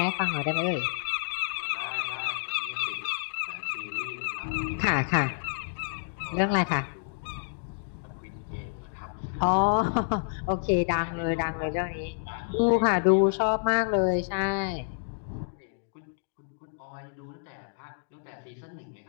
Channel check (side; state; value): right; silent; digital silence